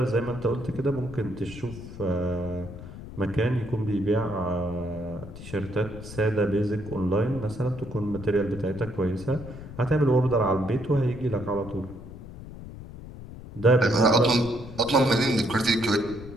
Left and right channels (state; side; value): noise; left; rumble, 13 dB below the sound